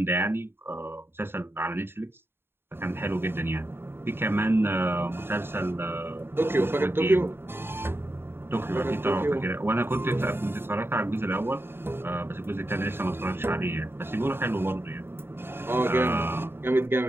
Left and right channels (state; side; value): late; left; 0.11 ms